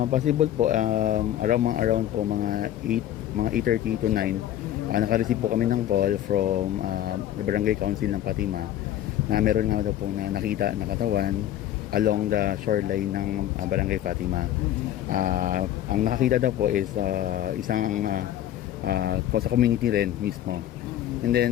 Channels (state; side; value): quieter; right; 12.1 dB